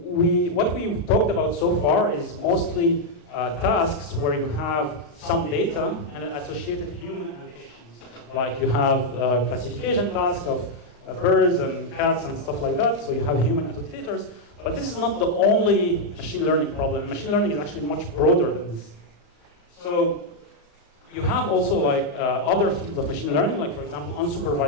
we've talked about so far is mostly tasks where you have some data and associated human allocations. Like you have a classification task of birds and cats and stuff like that, so you have human annotators. But this is not the only machine learning problem. Machine learning is actually much broader than this. So you have also like other fields of machine learning, like for example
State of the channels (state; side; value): late; right; 34 ms